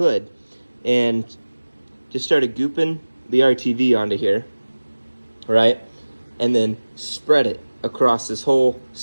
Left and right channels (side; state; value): both; inverted; correlation -1.00